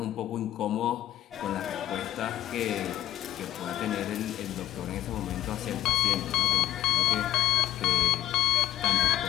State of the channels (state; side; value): quieter; right; 13.3 dB